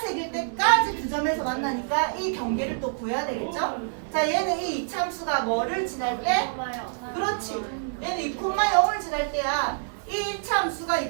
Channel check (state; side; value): silent; left; digital silence